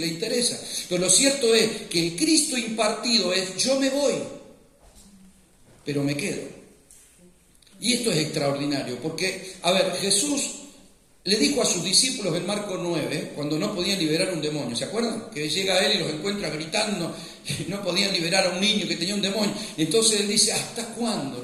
interesa. Pero lo cierto es que el Cristo impartido es: yo me voy, pero me quedo. Y esto es extraordinario, porque, a ver, Jesús le dijo a sus discípulos en Marcos 9, cuando no podían liberar un demonio, ¿se acuerdan? Que llega a Él y los encuentra gritando, no podían liberar a un niño que tenía un demonio. Entonces Él dice: ¿hasta cuándo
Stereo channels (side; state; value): both; identical; correlation 1.00